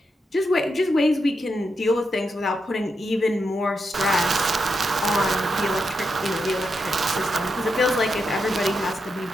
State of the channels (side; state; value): both; normal; correlation 0.85